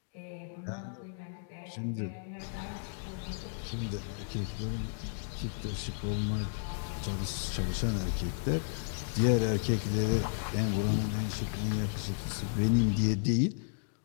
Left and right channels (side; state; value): right; silent; digital silence